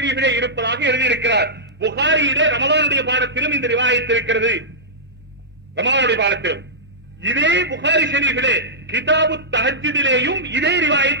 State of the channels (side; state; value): both; normal; correlation -0.13